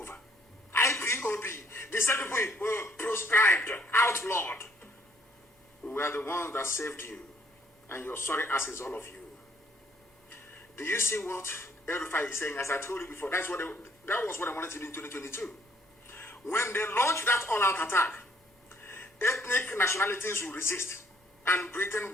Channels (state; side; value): normal; both; correlation 0.66